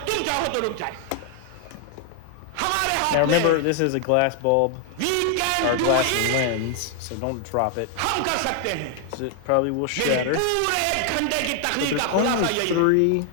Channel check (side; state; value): both; different; correlation 0.00